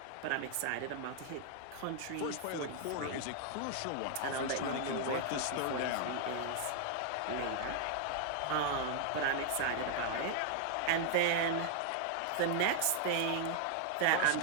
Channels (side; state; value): both; different; correlation 0.00